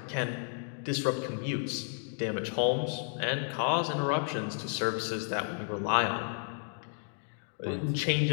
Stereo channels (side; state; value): right; silent; 56 dB below the other